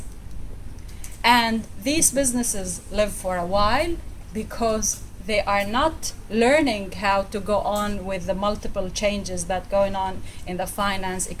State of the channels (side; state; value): both; identical; correlation 1.00